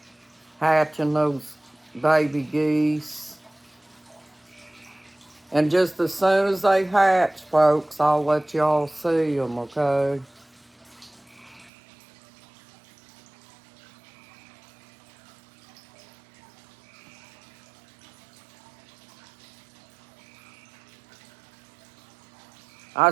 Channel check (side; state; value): left; drops out; at 11.7 s